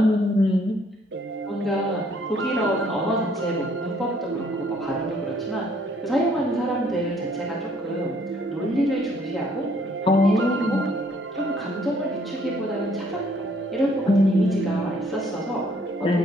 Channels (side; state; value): both; normal; correlation 0.64